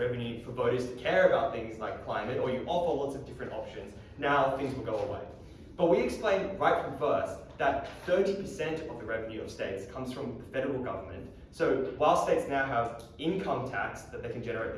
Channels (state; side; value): identical; both; correlation 1.00